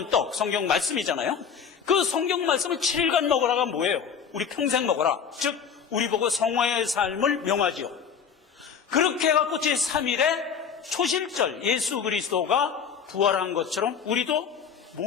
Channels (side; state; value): right; quieter; 7.0 dB